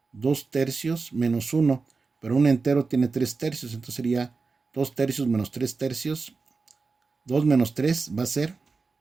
2 tercios menos 1, pero un entero tiene 3 tercios, entonces sería 2 tercios menos 3 tercios. 2 menos 3 va a ser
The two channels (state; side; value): quieter; left; 4.3 dB